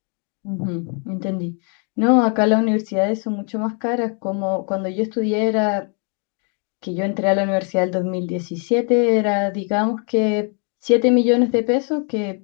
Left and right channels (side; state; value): right; quieter; 39.6 dB